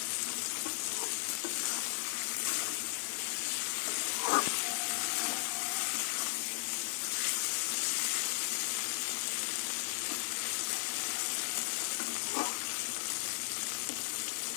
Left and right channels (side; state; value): right; silent; digital silence